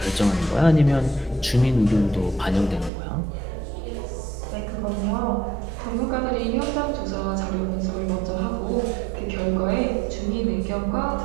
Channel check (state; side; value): drops out; left; at 2.9 s